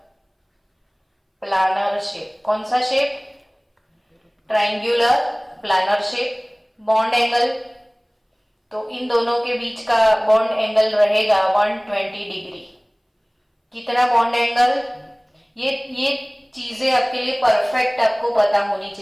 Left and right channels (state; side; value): identical; both; correlation 1.00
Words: प्लानर शेप। कौन सा shape? Triangular planar shape. Bond angle तो इन दोनों के बीच का बॉन्ड एंगल रहेगा 120 डिग्री। कितना बॉन्ड एंगल? ये चीजें आपके लिए परफेक्ट आपको पता होनी